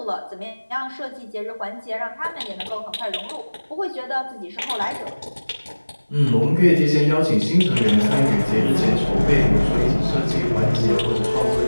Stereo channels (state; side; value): inverted; both; correlation -1.00